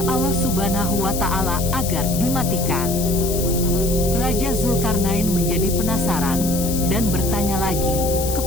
Allah Subhanahu wa Ta'ala agar dimatikan." Raja Zulkarnain menjadi penasaran dan bertanya lagi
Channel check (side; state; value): left; noise; hiss, 6 dB below the sound